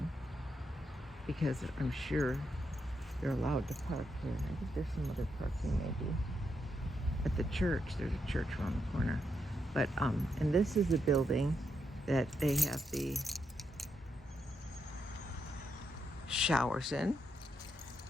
because I'm sure they're allowed to park here. I think there's some other parking maybe. At the church, there's a church around the corner. But, and this is a building that they have the showers in,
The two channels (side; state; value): both; normal; correlation 0.81